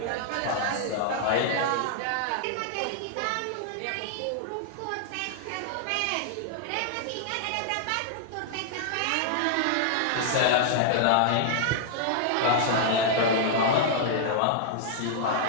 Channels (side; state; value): both; different; correlation -0.01